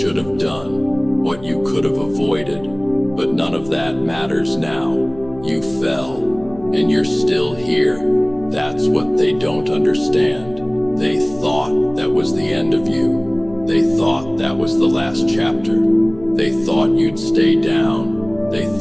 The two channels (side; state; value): left; noise; hum, 20 dB below the sound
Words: have done, what you could have avoided. But none of that matters now. You fell, and you're still here. That's what they don't understand. They thought that was the end of you. They thought that was the last chapter. They thought you'd stay down. They